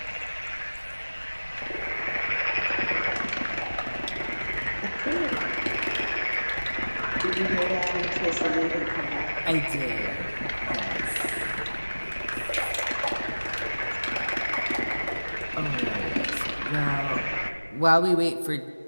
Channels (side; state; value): both; inverted; correlation -1.00